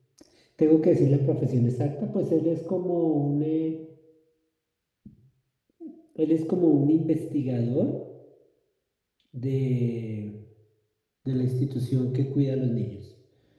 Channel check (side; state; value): both; identical; correlation 1.00